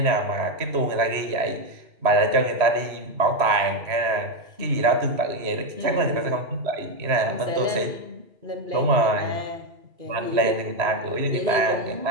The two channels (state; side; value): late; left; 3.0 ms